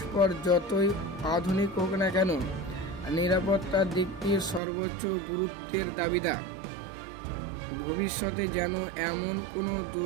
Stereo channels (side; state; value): left; drops out; at 4.6 s